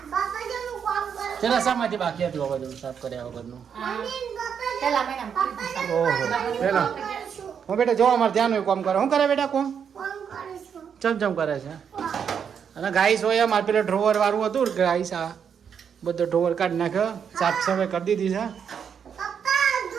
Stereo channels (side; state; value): left; quieter; 7.4 dB